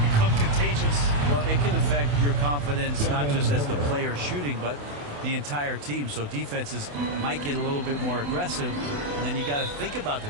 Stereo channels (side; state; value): left; late; 28 ms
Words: become contagious. Well, it can affect your confidence, not just as the player shooting, but the entire team. So defenses might get a little bit more aggressive, and then you got to think about the